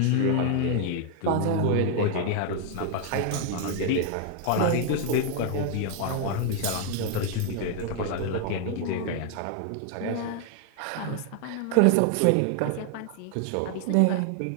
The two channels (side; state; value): both; different; correlation 0.00